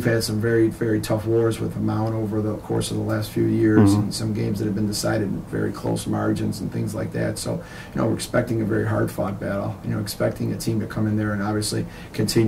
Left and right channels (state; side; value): identical; both; correlation 1.00